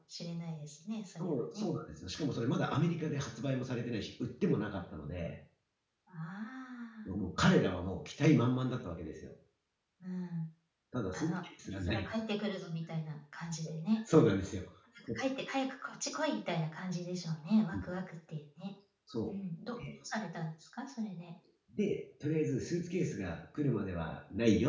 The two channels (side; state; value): both; identical; correlation 1.00